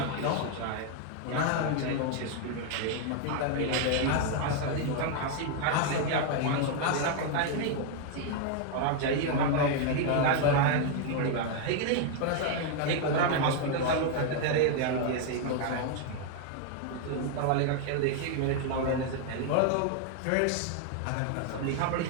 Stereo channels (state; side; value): different; both; correlation 0.00